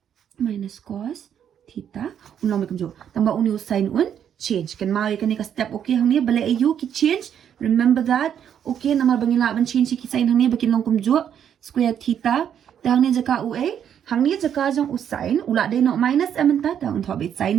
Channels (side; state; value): left; quieter; 9.0 dB